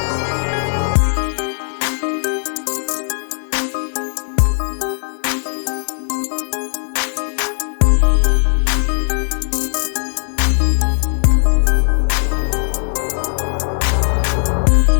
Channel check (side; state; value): right; silent; digital silence